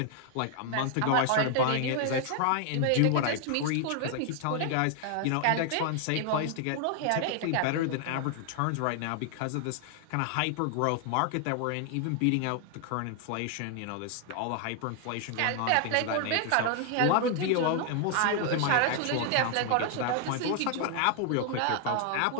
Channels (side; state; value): both; different; correlation 0.00